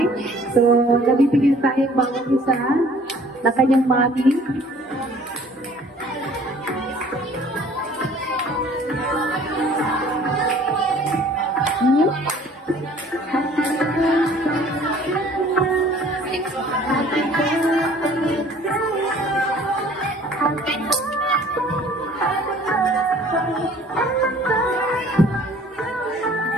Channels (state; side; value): normal; both; correlation 0.53